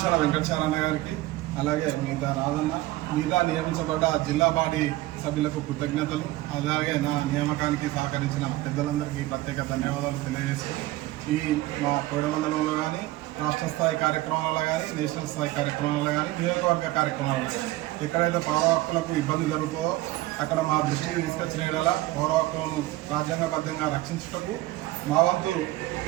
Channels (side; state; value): left; quieter; 17.5 dB